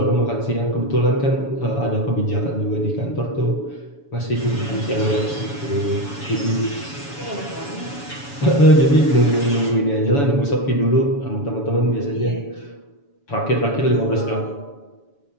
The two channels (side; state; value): right; late; 7.1 ms